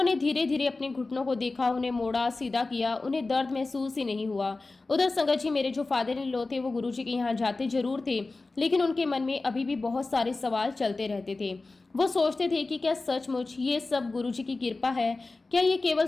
धीरे धीरे अपने घुटनों को देखा, उन्हें मोड़ा, सीधा किया। उन्हें दर्द महसूस ही नहीं हुआ। उधर संगत जी, मेरे जो फादर इन लॉ थे, वो गुरुजी के यहाँ जाते जरूर थे, लेकिन उनके मन में अभी भी बहुत सारे सवाल चलते रहते थे। वो सोचते थे कि क्या सचमुच ये सब गुरुजी की कृपा है? क्या ये केवल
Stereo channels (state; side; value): quieter; right; 3.5 dB